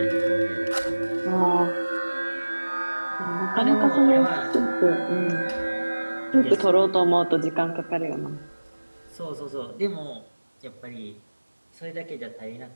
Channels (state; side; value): inverted; both; correlation -1.00